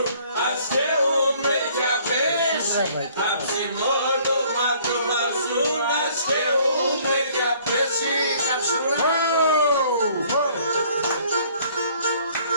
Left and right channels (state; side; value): inverted; both; correlation -0.58